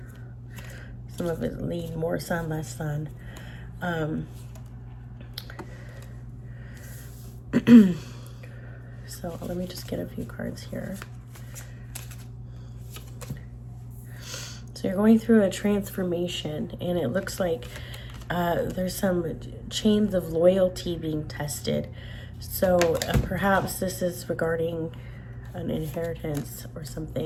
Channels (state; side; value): identical; both; correlation 1.00